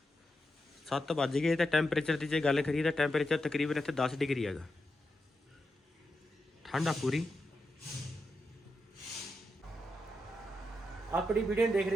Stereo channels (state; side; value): normal; both; correlation 0.87